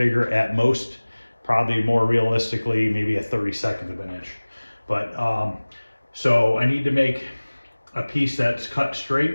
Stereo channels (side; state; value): both; inverted; correlation -1.00